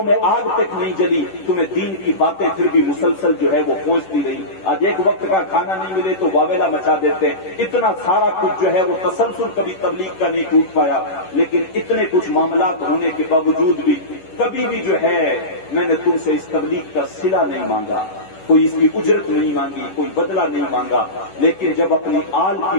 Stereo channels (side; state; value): right; late; 10 ms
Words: میں آگ تک نہیں جلی، تمہیں دین کی باتیں پھر بھی مسلسل جو ہے وہ پہنچتی رہی۔ آج ایک وقت کا کھانا نہیں ملے تو واویلا مچا دیتے ہیں۔ اتنا سارا کچھ جو ہے وہ تسلسل کبھی تبلیغ کا نہیں ٹوٹ پایا، لیکن اتنے کچھ معاملات ہونے کے باوجود بھی کبھی بھی جو ہے میں نے تم سے اس تبلیغ کا صلہ نہیں مانگا، کوئی اس کی اجرت نہیں مانگی، کوئی بدلہ نہیں مانگا، لیکن جب اپنی آل کی